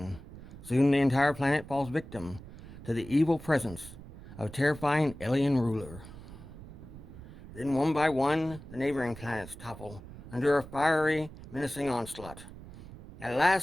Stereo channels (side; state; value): right; noise; rumble, 15 dB below the sound